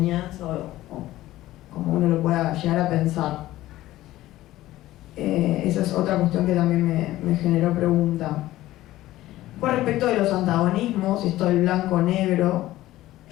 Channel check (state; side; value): quieter; right; 15.7 dB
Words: o como uno lo pueda llegar a pensar. Esa es otra cuestión que también me generó pregunta. Con respecto de los antagonismos, esto del blanco-negro,